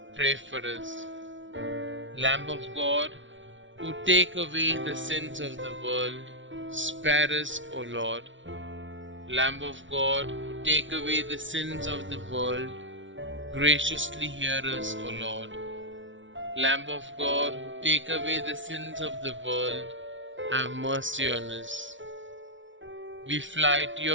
pray for us. Lamb of God, who take away the sins of the world, spare us, O Lord. Lamb of God, who take away the sins of the world, graciously hear us, O Lord. Lamb of God, who take away the sins of the world, have mercy on us. We fly to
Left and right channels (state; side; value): late; left; 0.56 ms